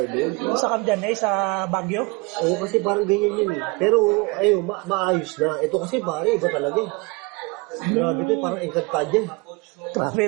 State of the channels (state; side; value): quieter; left; 26.7 dB